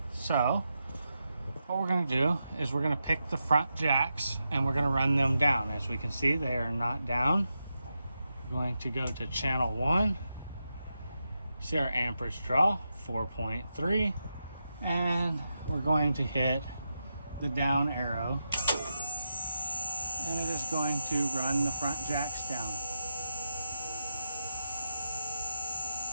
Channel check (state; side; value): inverted; both; correlation -0.87